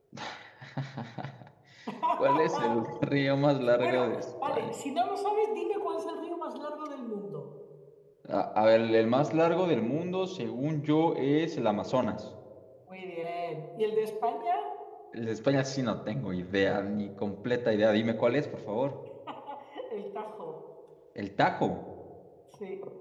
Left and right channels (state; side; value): identical; both; correlation 1.00